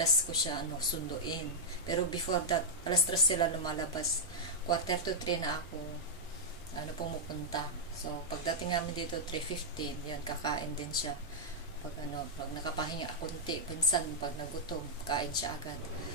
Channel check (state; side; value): normal; both; correlation -0.06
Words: ko siya sunduin. Pero before that, alas 3 sila lumalabas. 2:45 na ako pumupunta. So pagdating namin dito 3:15, yan, kakain din siya. Pag nakapahinga konti, pinsan pag nagutom, kain siya agad.